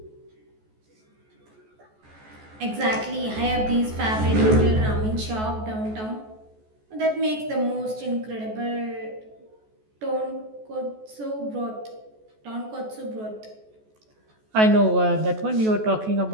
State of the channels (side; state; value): left; late; 14 ms